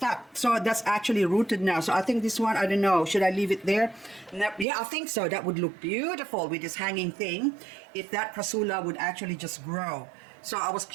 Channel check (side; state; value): left; drops out; at 4.7 s